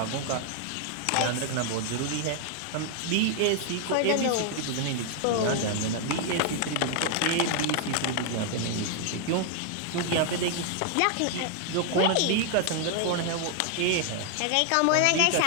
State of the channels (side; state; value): both; different; correlation 0.00